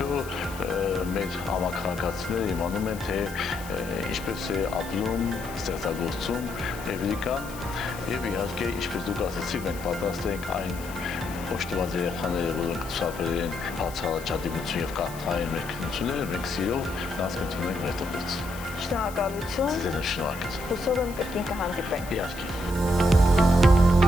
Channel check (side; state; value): left; noise; hiss, 16 dB below the sound